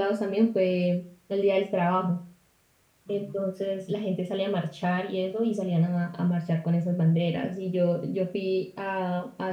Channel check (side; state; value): both; identical; correlation 1.00